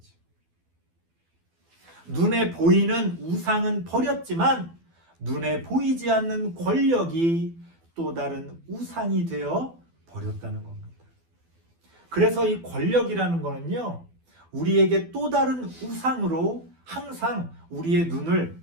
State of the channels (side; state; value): left; late; 12 ms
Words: 눈에 보이는 우상은 버렸지만 눈에 보이지 않는 권력이 또 다른 우상이 되어 버렸다는 겁니다. 그래서 이 권력이라는 거는요, 우리에게 또 다른 우상으로 항상 우리의